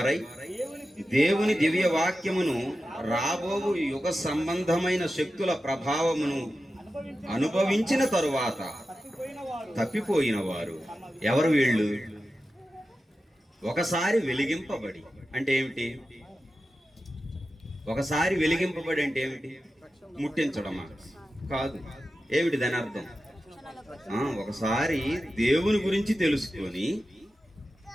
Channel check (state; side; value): normal; both; correlation 0.92